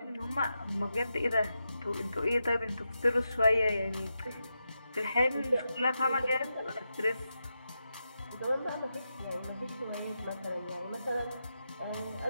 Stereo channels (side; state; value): both; inverted; correlation -0.88